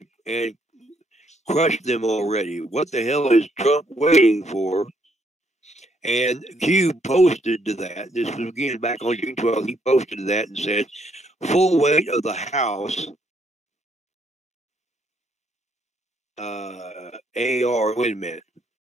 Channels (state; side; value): normal; both; correlation 0.71